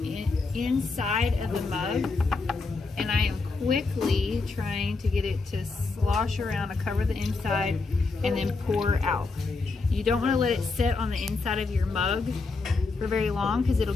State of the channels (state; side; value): quieter; right; 4.0 dB